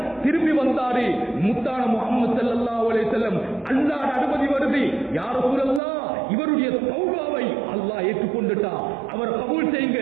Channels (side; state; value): left; drops out; at 5.8 s